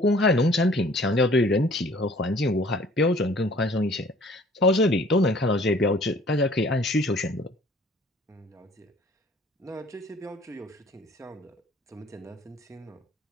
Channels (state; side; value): normal; both; correlation 0.54